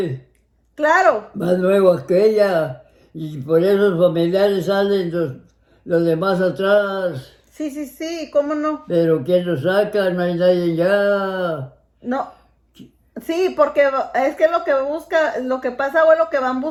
claro, más nuevos que ella, y por esos familiares salen los demás atrás. sí, ¿cómo no? Pero ¿quién los saca? No hay nadie ya. No, sí, porque es que lo que pasa, abuelo, que van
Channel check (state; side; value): identical; both; correlation 1.00